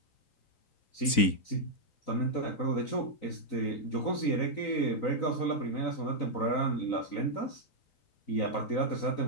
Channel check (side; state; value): right; late; 3.9 ms